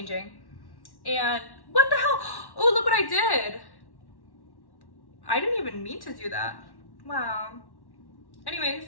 And what the hell? Oh, look what I did. I didn't even mean to do that. Wow. Anyways,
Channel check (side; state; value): right; late; 1.1 ms